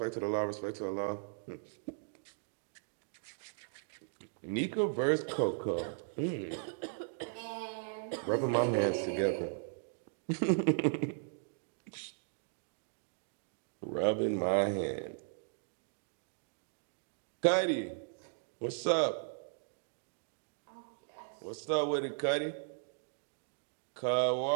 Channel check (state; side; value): silent; left; digital silence